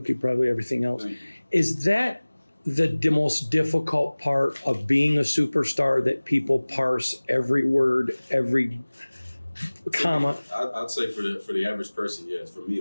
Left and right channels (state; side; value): inverted; both; correlation -1.00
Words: probably everything else. Is that the most difficult part of being a superstar, that people parse every word, every comma? I'd say for the average person, yes. For me,